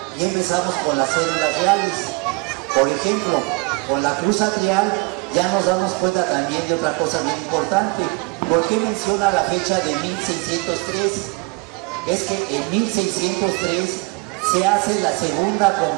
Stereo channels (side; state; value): left; quieter; 28.9 dB